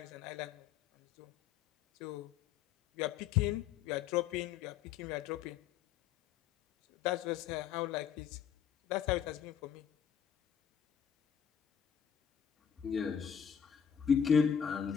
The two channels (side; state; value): right; quieter; 8.4 dB